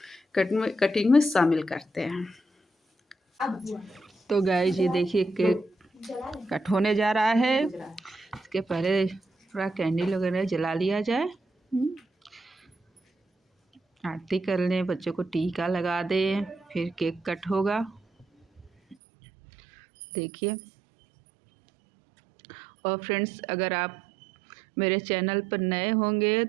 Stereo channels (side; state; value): left; drops out; at 18.9 s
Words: कटिंग में शामिल करते हैं। तो गाइस ये देखिए केक कट होने जा रहा है। इसके पहले थोड़ा कैंडल वगैरह जला लिया जाए, आरती कर लें, बच्चों को टीका लगा दें, फिर केक कट होगा। देखिए। और फ्रेंड्स, अगर आप मेरे चैनल पर नए होंगे